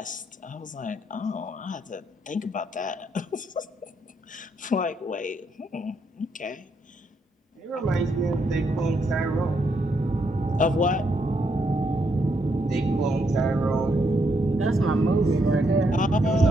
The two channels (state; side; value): normal; both; correlation 0.77